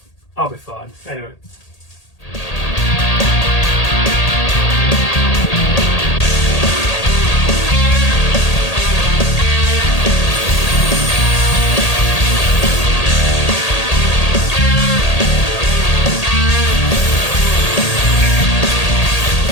be fine. Anyway.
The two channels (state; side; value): late; right; 1.8 ms